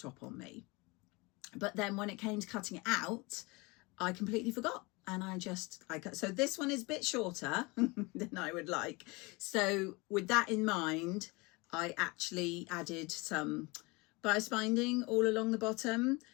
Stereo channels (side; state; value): right; quieter; 25.6 dB